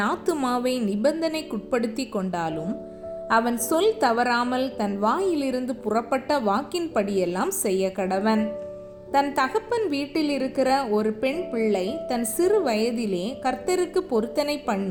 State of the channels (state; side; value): identical; both; correlation 1.00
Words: ஆத்துமாவை நிபந்தனைக்குட்படுத்தி கொண்டாலும் அவன் சொல் தவறாமல் தன் வாயிலிருந்து புறப்பட்ட வாக்கின்படியெல்லாம் செய்ய கடவன். தன் தகப்பன் வீட்டில் இருக்கிற ஒரு பெண் பிள்ளை தன் சிறு வயதிலே கர்த்தருக்கு பொருத்தனை